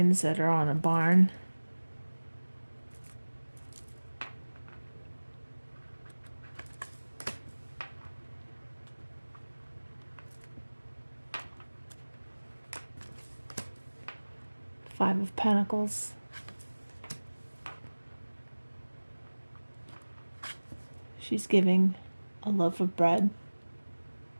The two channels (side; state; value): both; inverted; correlation -1.00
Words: that are on a barn. Five of Pentacles. She's giving a loaf of bread.